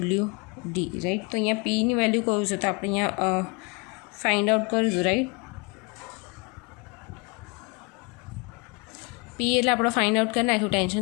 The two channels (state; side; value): quieter; right; 30.6 dB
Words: રાઈટ. તો અહીંયા Pની વેલ્યુ કયું છે તો આપણે અહીંયા ફાઇન્ડ આઉટ કરીશું, રાઈટ. P એટલે આપણે ફાઇન્ડ આઉટ કરી નાખ્યું.